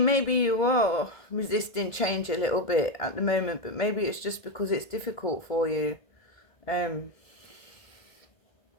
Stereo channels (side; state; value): right; late; 2.1 ms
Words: maybe you are resisting change a little bit at the moment, but maybe it's just because it's difficult for you.